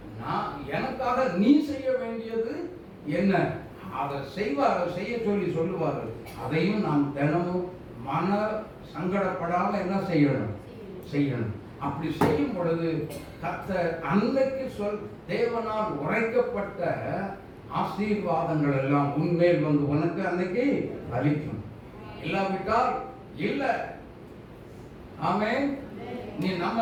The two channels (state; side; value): identical; both; correlation 1.00